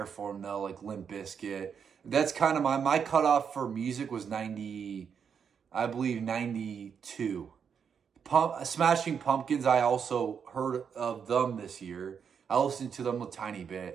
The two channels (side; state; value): left; quieter; 7.0 dB